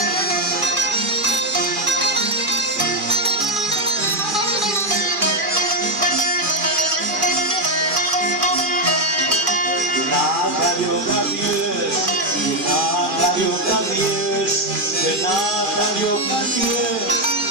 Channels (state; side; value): late; left; 2.4 ms